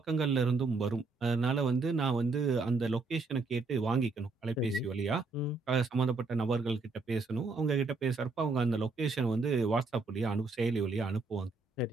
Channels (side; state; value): left; quieter; 3.8 dB